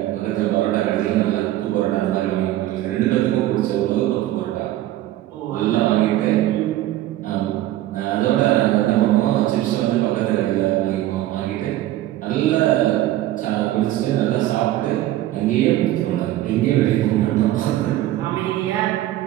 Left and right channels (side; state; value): left; quieter; 14.5 dB